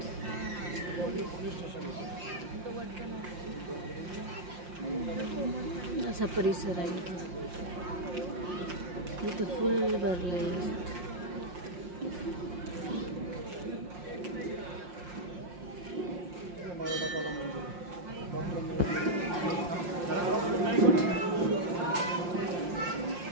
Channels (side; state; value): left; late; 5.6 ms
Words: असा परिसर आहे. इथं फुल भरलेलं असतं.